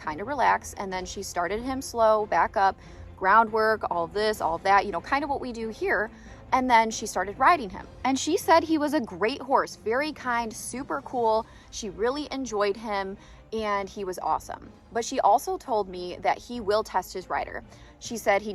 of relax, and then she started him slow, back up, groundwork, all of this, all of that, you know, kind of what we do here. And then she started riding him. And she said he was a great horse, very kind, super cool. She really enjoyed him and he was awesome. But she also told me that he will test his rider. She said he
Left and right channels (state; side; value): identical; both; correlation 1.00